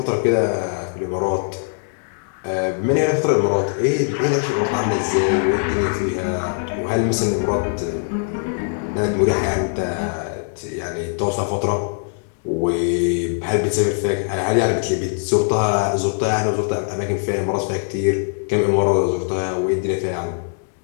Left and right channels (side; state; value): right; silent; digital silence